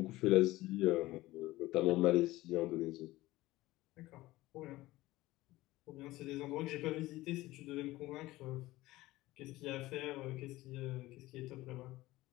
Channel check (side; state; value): right; quieter; 18.0 dB